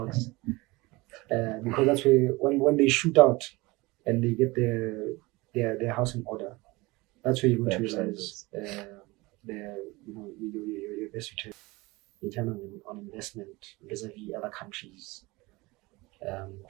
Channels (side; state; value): left; quieter; 22.6 dB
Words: because that's where when they shoot out and they get their house in order, that's where you're going to realize your best return in terms on investment vis-a-vis other countries